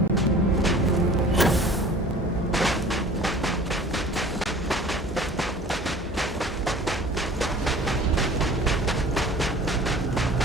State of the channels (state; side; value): normal; both; correlation 0.46